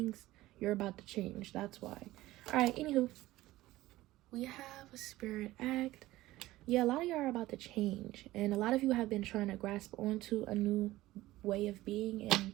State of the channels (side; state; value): left; quieter; 17.0 dB